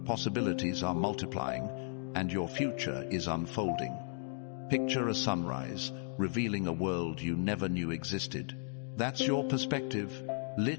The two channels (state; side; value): silent; right; 54 dB below the other